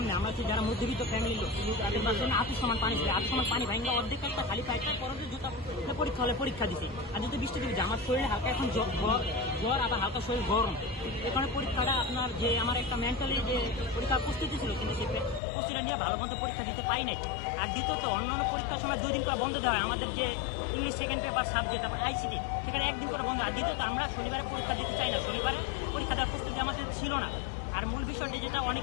আমরা হচ্ছে যারা মধ্যবিত্ত ফ্যামিলির লোক, তাদের বাসার আঁটু সমান পানি ছিল, আঁটু সমান পানি ভাঙা অর্ধেক একটা খালি পাইপটা পরে জুতা পরীক্ষা হলে পরীক্ষা দিছে। আর যেহেতু বৃষ্টি দিচ্ছে আমার শরীরে হালকা এখন জ্বর আবার হালকা শরীর গরম, এখানে পরীক্ষাটা আপনার যে আমার একটা মেন্টালি যে পরীক্ষার প্রস্তুতি ছিল কিন্তু সে প্রস্তুতিটা নিয়ে ভালো মতো পরীক্ষা দিতে পাই নাই। আর দ্বিতীয়ত অন্যান্য পরীক্ষার সময় 2 দিন করে বন্ধ দেওয়া হয়, আমাদের যে English second paper subject ICT সেখানে 1 দিন করে বন্ধ। আর দ্বিতীয়ত আমরা শনিবারে পরীক্ষা দিতে চাই না, শনিবারে পরীক্ষা দেওয়ার প্রস্তুতি আমাদের ছিল না। আর মূল বিষয়টি যেটা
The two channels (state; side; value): drops out; right; at 15.4 s